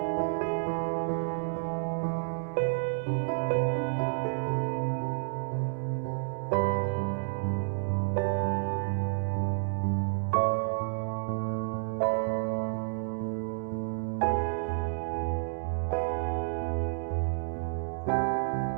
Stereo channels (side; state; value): left; silent; digital silence